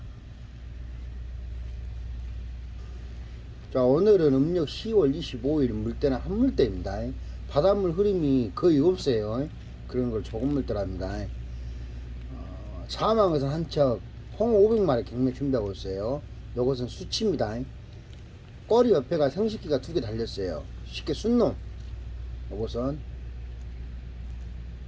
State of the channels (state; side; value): identical; both; correlation 1.00